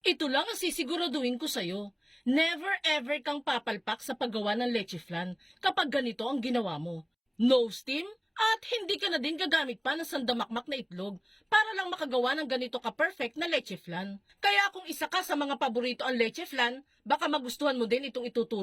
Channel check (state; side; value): identical; both; correlation 1.00